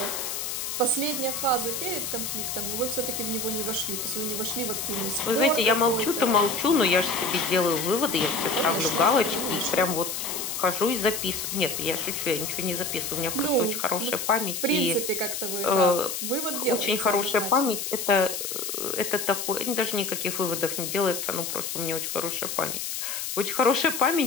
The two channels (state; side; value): noise; left; hiss, 4 dB below the sound